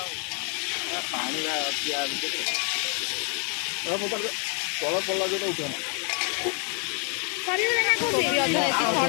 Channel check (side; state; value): right; quieter; 38.6 dB